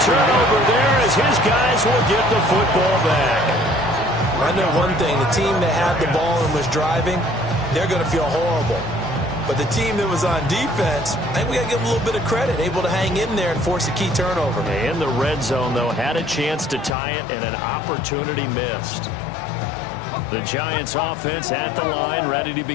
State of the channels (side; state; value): right; drops out; at 16.9 s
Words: turnover there as his guys will get the football back. I know one thing. The team that had the ball and was driving, they're going to feel horrible. But the team that was on defense, I think we got to give them a little bit of credit, able to hang in there and force a key turnover. In the red zone, though, had a chance to tie it and an opportunity missed. The Giants offense at the line, ready to